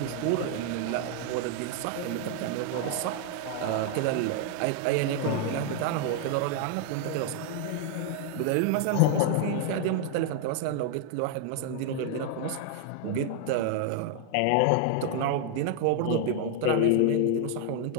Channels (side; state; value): both; different; correlation 0.00